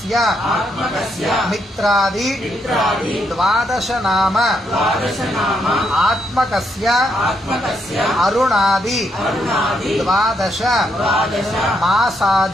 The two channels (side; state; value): both; normal; correlation 0.77